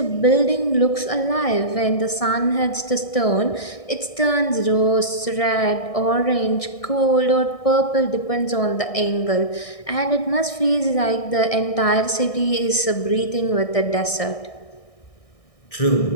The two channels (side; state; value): right; late; 1.6 ms